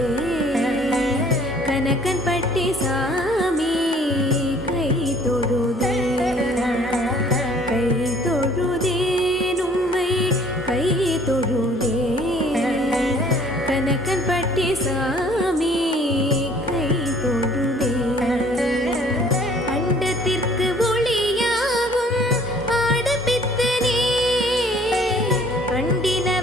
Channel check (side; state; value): both; normal; correlation 0.56